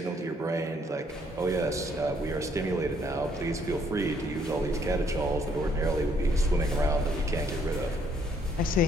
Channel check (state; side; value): normal; both; correlation 0.67